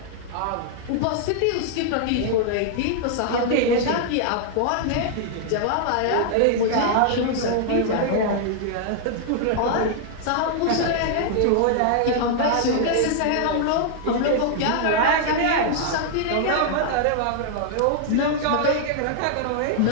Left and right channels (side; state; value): both; different; correlation -0.01